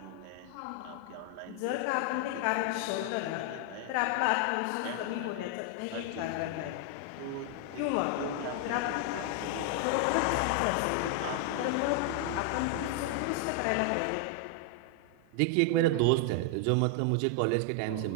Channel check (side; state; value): both; different; correlation 0.00